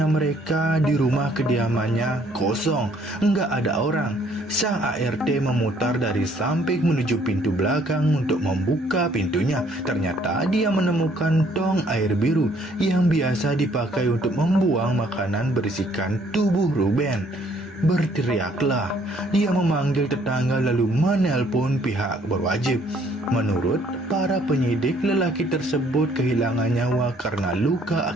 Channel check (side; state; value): both; normal; correlation 0.63